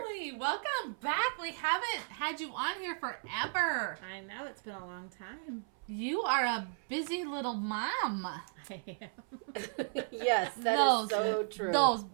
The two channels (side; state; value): left; silent; 55 dB below the other